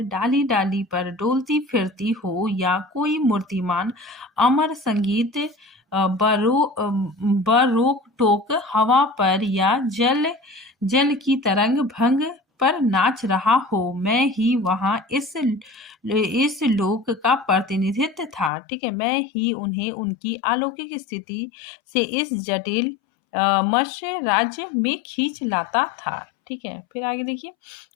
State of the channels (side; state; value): right; drops out; at 18.5 s